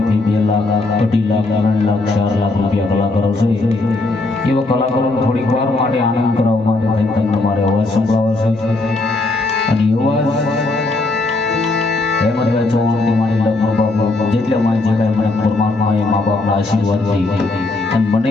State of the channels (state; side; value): quieter; right; 3.1 dB